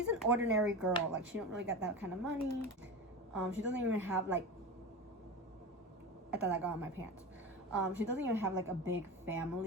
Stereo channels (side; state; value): both; normal; correlation 0.25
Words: an ordinary girl. She don't really got that kind of money. She doesn't even have I thought I got on my pants. She doesn't even have a big